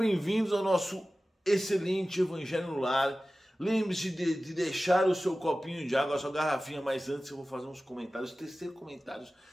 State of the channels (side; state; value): both; normal; correlation 0.96